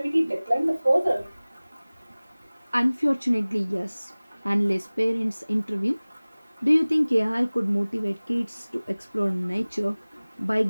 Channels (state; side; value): inverted; both; correlation -1.00